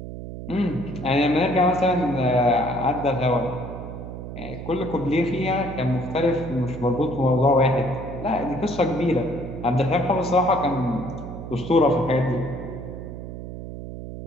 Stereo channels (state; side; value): noise; right; hum, 10 dB below the sound